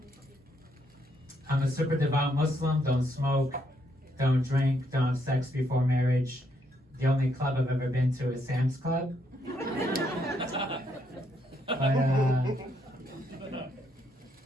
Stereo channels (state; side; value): normal; both; correlation 0.74